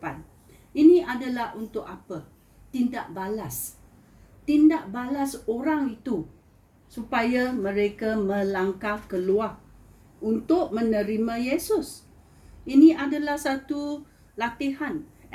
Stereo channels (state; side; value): identical; both; correlation 1.00